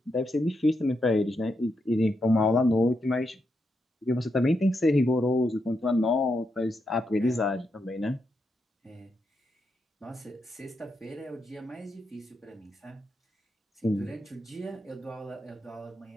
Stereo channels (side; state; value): both; normal; correlation 0.83